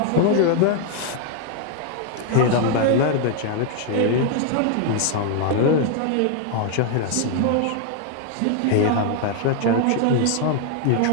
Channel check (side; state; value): both; different; correlation 0.00